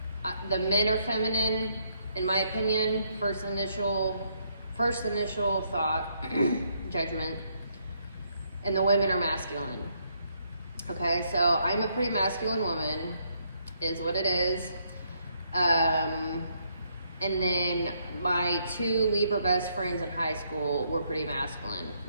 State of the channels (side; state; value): both; inverted; correlation -0.73